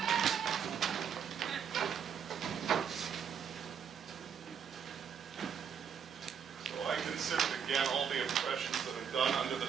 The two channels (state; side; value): quieter; left; 7.5 dB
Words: began all the oppressions that are done under the